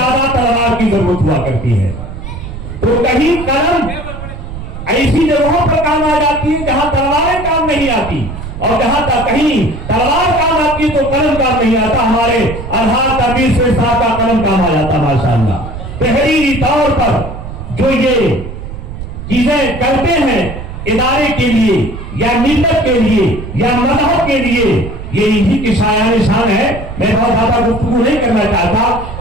तलवार की जरूरत हुआ करती है। तो कहीं कलम ऐसी जगहों पर काम आ जाती है जहां तलवारें काम नहीं आती, और जहां तक कहीं तलवार काम आती है तो कलम काम नहीं आता। हमारे अलहाज तनवीर शेख साहब का कलम काम आ जाता माशाअल्लाह। तहरीरी तौर पर जो ये चीजें करते हैं इदारे के लिए या मिल्लत के लिए या मजहब के लिए, ये इसी की शायान शान है। मैं बहुत ज्यादा गुफ्तगू नहीं करना चाहता।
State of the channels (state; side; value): noise; right; rumble, 10 dB below the sound